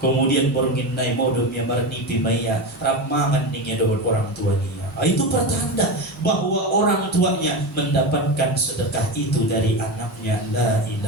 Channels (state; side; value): normal; both; correlation 0.20